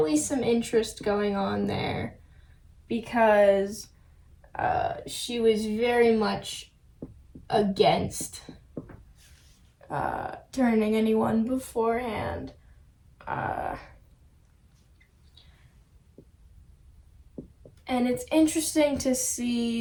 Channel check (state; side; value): identical; both; correlation 1.00